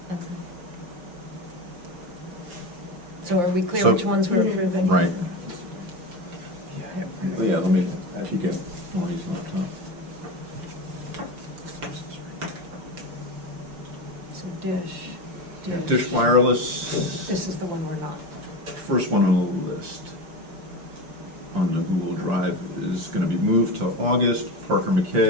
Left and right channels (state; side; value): late; left; 5.8 ms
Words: So are we clear So- which ones we're approving? Right. Yeah, let me, if you get Tony's laptop. So Dish. Dish Wireless, This is the one we're not. first one on the list on the Google Drive is going to be moved to August. Parker